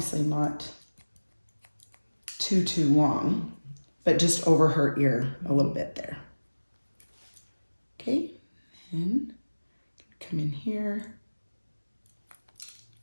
not too long, but just over her ear a little bit there. Okay, and come in here.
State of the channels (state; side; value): inverted; both; correlation -1.00